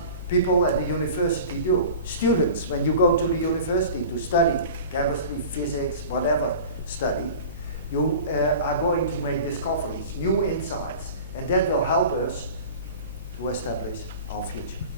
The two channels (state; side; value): inverted; both; correlation -0.38